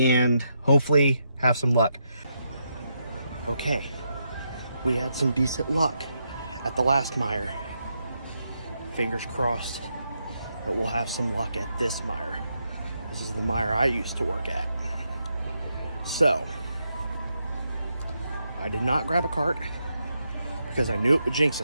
hopefully have some luck. Okay. We had some decent luck at the last mire. Fingers crossed that we'll have some luck at this mire. This is the mire I used to work at. So, I did not grab a cart because I knew it would jinx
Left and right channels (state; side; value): inverted; both; correlation -0.81